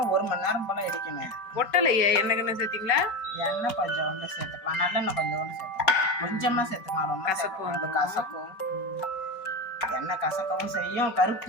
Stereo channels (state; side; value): late; right; 5.3 ms